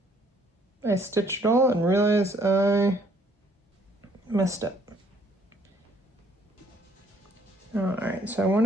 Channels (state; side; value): normal; both; correlation 0.64